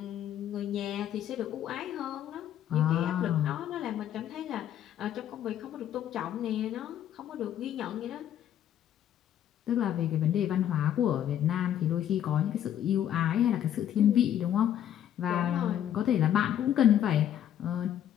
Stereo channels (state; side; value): quieter; right; 10.7 dB